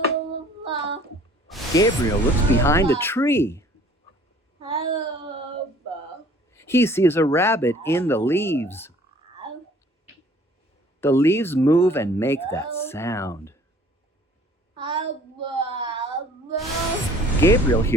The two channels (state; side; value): normal; both; correlation 0.53